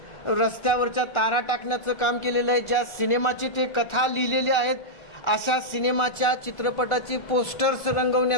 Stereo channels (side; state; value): right; late; 1.4 ms